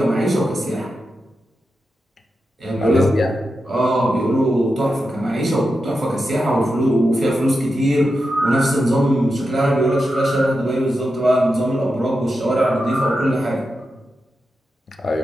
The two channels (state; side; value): normal; both; correlation 0.89